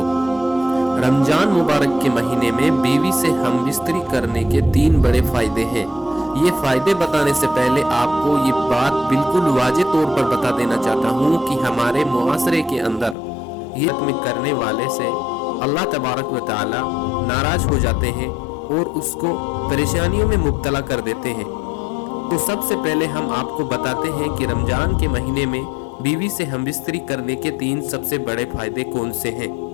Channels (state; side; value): drops out; right; at 13.2 s